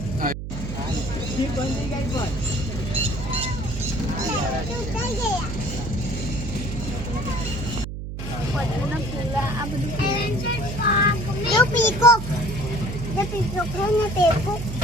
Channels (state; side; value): noise; right; hum, 7 dB below the sound